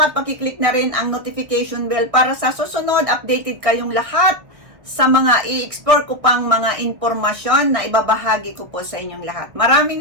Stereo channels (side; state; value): left; late; 1.9 ms